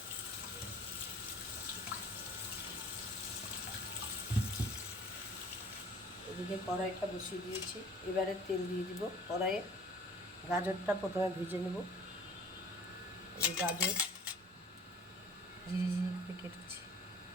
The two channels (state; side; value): normal; both; correlation 0.50